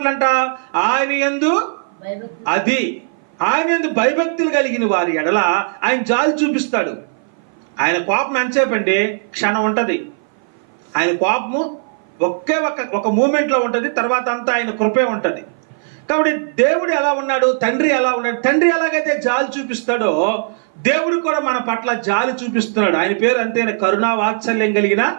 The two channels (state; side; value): silent; left; 58 dB below the other